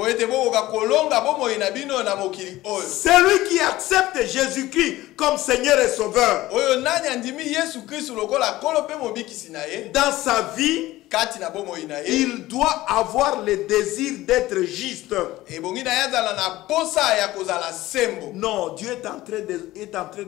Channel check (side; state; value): right; quieter; 17.0 dB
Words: Celui qui accepte Jésus-Christ comme Seigneur et Sauveur dans sa vie, il doit avoir le désir d'être juste. Non, Dieu est en train